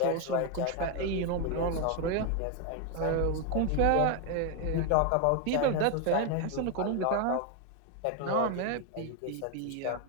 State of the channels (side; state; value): both; different; correlation 0.01